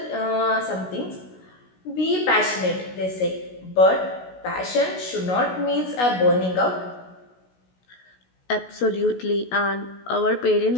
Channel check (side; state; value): right; late; 16 ms